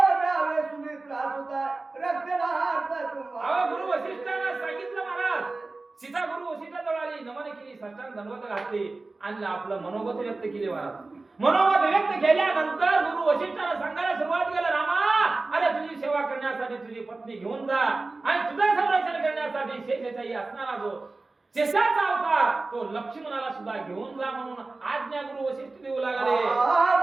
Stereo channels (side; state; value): left; quieter; 3.4 dB